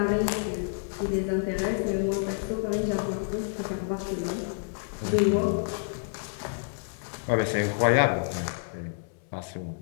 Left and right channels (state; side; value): silent; right; digital silence